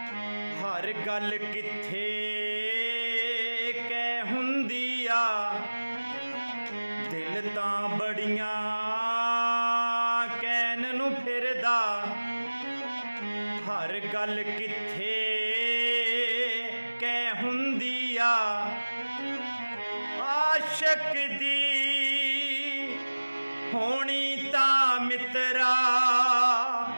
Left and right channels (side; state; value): both; inverted; correlation -1.00